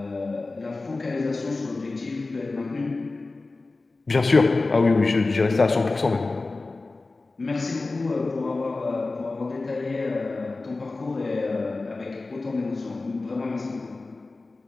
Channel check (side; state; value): right; quieter; 3.4 dB